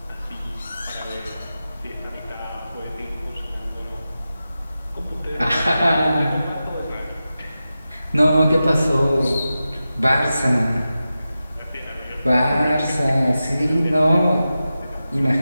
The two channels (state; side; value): inverted; both; correlation -0.93